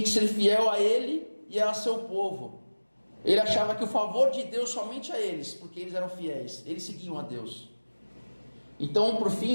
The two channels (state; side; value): inverted; both; correlation -1.00